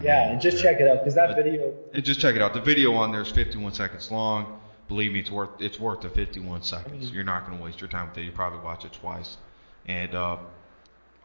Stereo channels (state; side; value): inverted; both; correlation -1.00